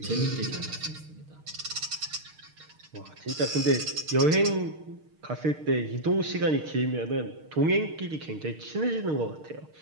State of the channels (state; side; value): late; left; 6.5 ms